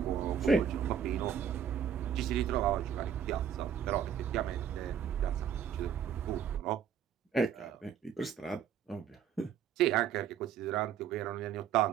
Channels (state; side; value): quieter; left; 8.4 dB